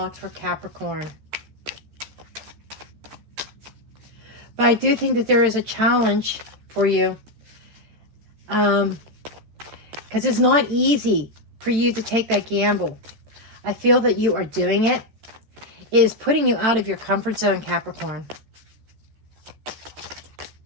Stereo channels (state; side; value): late; left; 13 ms